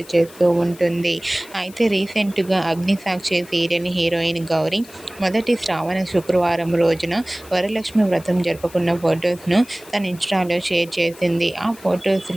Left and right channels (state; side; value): noise; left; hiss, 21 dB below the sound